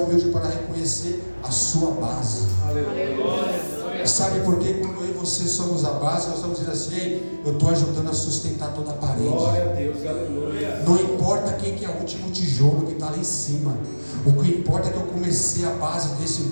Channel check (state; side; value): inverted; both; correlation -1.00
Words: para reconhecer a sua base. Aleluia. Sabe por quê? Quando eu e você somos a base, nós estamos dizendo assim: ei, eu estou ajudando a sustentar toda a parede. Glória a Deus, aleluia. Não importa quem que é o último tijolo que está lá em cima. O que importa é que eu comecei a base desse